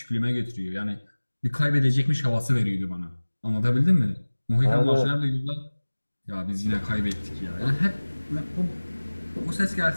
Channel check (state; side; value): inverted; both; correlation -1.00